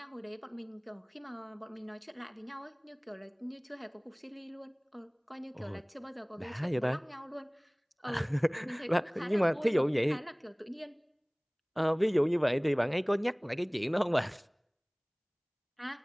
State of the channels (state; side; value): identical; both; correlation 1.00